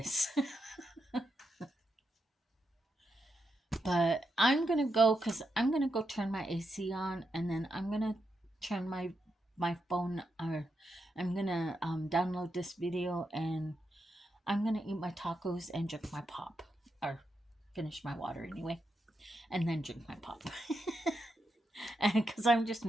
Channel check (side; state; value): both; normal; correlation 0.84